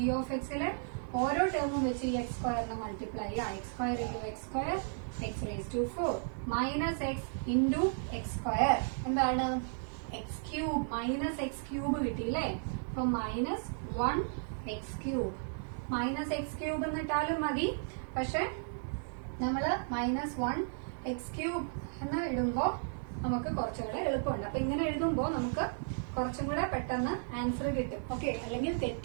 എക്സിലെ ഓരോ ടേമും വെച്ച് ഈ എക്സ് സ്ക്വയറിനെ മൾട്ടിപ്ലൈ ചെയ്യാം. X square into X square X raise to 4 minus X into X square എന്താണ് X cube, minus X cube കിട്ടിയില്ലേ. അപ്പൊ minus 1x³ minus X cube എന്നിട്ടാലും മതി, പക്ഷെ നമ്മള് മൈനസ് 1x³ എന്ന് ഇടുമ്പോ നമുക്ക് കുറച്ചുകൂടെ എളുപ്പമുണ്ട്. അപ്പൊ ഇങ്ങനെ എഴുതുമ്പോ നമുക്ക് കുറച്ചും കൂടെ പെട്ടെന്ന് ആൻസർ കിട്ടും. ഓക്കെ, അല്ലെങ്കിൽ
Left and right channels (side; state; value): left; silent; digital silence